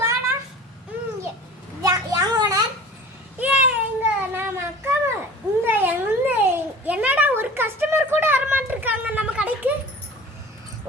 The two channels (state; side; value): normal; both; correlation 0.41